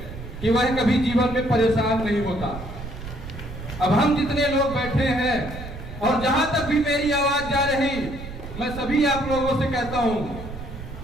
कि वह कभी जीवन में परेशान नहीं होता। अब हम जितने लोग बैठे हैं और जहां तक भी मेरी आवाज जा रही, मैं सभी आप लोगों से कहता हूं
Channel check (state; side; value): noise; right; rumble, 11 dB below the sound